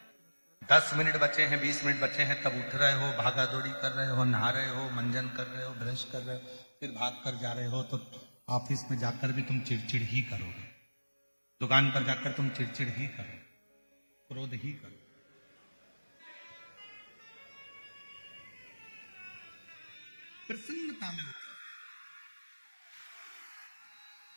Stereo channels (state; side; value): inverted; both; correlation -1.00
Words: 10 मिनट बचे हैं, 20 मिनट बचे हैं, तब उठ रहे हो, भागा दौड़ी कर रहे हो, नहा रहे हो, मंजन कर रहे हो, ब्रश कर रहे हो, फिर भाग कर जा रहे हो, तो ऑफिस में जाकर भी तुम चिड़चिड़ ही करोगे, दुकान पर जाकर तुम चिड़चिड़ ही करो, क्रोध ही करो। प्रसन्नता में उठो।